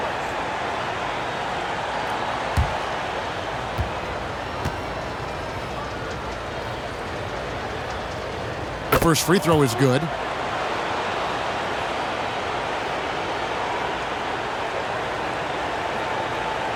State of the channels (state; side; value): identical; both; correlation 1.00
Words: The first free throw is good.